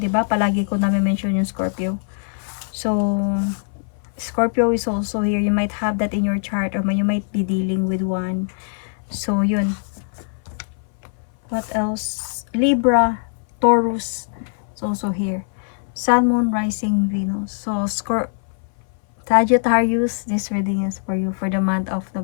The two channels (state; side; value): silent; right; 58 dB below the other